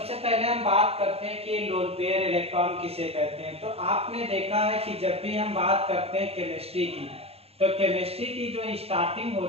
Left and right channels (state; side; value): late; left; 0.29 ms